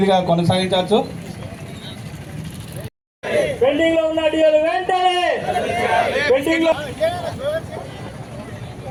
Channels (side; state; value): both; identical; correlation 1.00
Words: కొనసాగించవచ్చు. పెండింగ్ లో ఉన్న డియోలు వెంటనే పెండింగ్ లో